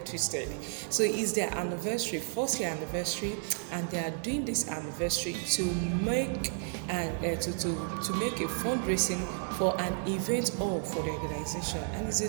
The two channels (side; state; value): left; silent; 56 dB below the other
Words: twisted. So it's their anniversary, first year anniversary, and they are doing this anniversary to make to make a fundraising for an event all for the organization, and it's